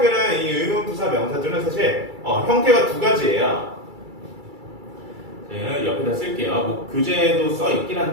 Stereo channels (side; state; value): left; late; 2.3 ms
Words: 이 의문 부사 명사들은 사실 형태가 두 가지예요. 제가 옆에다 쓸게요. 뭐 교재에도 써 있긴